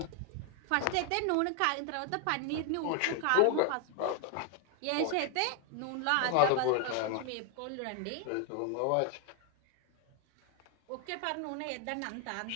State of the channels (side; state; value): both; different; correlation 0.00